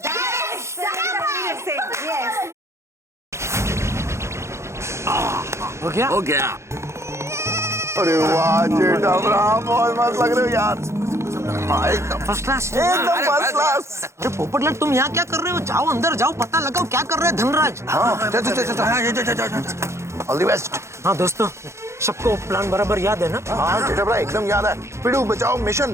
हो गया। अरे वाह जेठामराव, बहुत मस्त लग रहे हो यार। एकदम फर्स्ट क्लास। एकदम फर्स्ट क्लास। अरे पोपटलाल, तुम यहाँ क्या कर रहे हो? जाओ अंदर जाओ, पता लगाओ क्या कर रहे हैं धनराज। हाँ, ऑल द बेस्ट। हाँ दोस्तों, सबको प्लान बराबर याद है ना? हाँ जेठामराव, एकदम याद है। पिड़ू बचाओ मिशन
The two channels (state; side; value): late; left; 0.13 ms